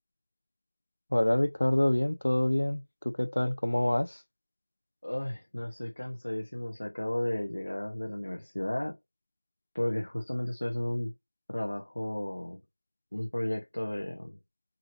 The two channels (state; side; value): inverted; both; correlation -1.00